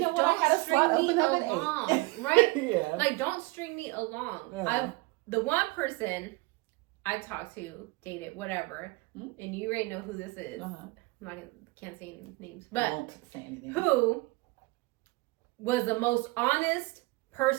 what? Don't I had a slot string me open up at along, 8. right? Yeah. Like, don't string me along. Yeah. The one person I talked to, dated, whatever, and you already know who this is. Uh-huh. Can't say any names, I but won't say anything. who was the most honest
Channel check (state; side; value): quieter; left; 23.8 dB